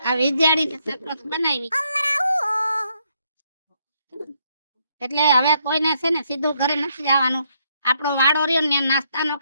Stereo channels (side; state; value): both; inverted; correlation -0.74